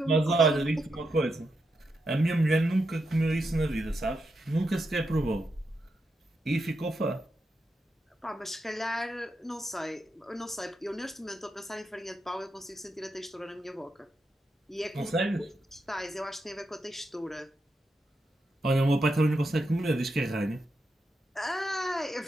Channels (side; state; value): both; normal; correlation 0.85